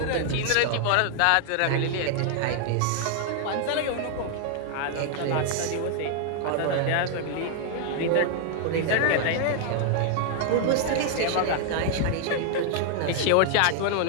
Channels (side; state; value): both; different; correlation 0.00